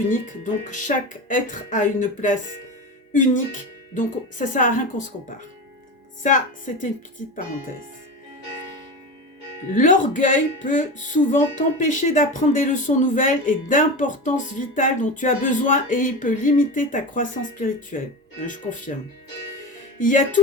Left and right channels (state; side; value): normal; both; correlation 0.25